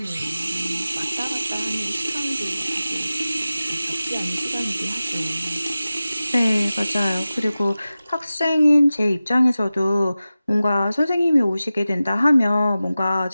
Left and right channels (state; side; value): inverted; both; correlation -0.95